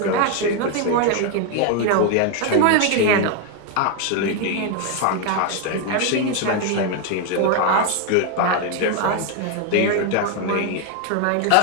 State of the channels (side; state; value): both; different; correlation 0.01